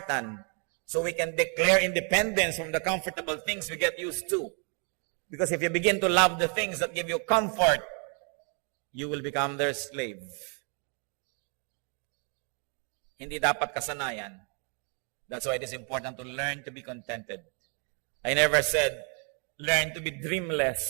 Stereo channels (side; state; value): left; quieter; 39.0 dB